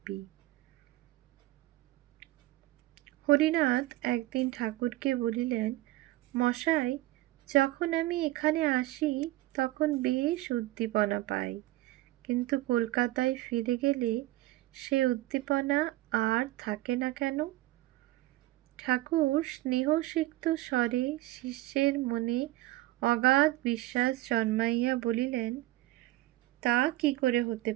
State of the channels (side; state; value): left; quieter; 17.5 dB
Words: হরিনাথ একদিন ঠাকুরকে বলিলেন, মশাই, যখন আমি এখানে আসি তখন বেশ উদ্দীপনা পাই, কিন্তু কলকাতায় ফিরে গেলে সে উদ্দীপনা আর থাকে না কেন? ঠাকুর স্নেহসিক্ত স্বরে শিষ্যের মনে অগাধ বিশ্বাস জন্মাইয়া বলিলেন, তা কি করে হতে